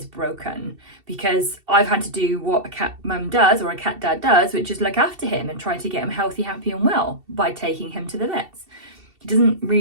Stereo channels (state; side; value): late; left; 2.7 ms